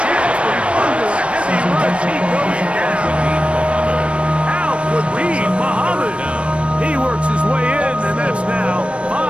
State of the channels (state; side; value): late; left; 0.060 ms